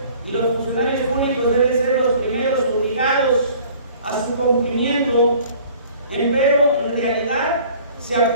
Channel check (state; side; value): inverted; both; correlation -0.52